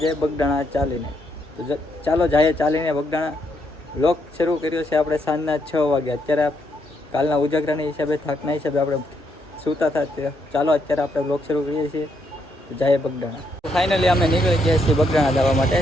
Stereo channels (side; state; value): both; normal; correlation 0.76